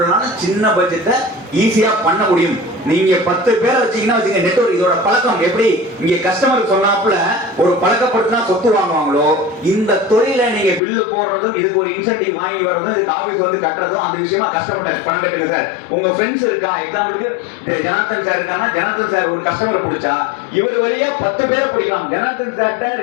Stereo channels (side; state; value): right; drops out; at 10.8 s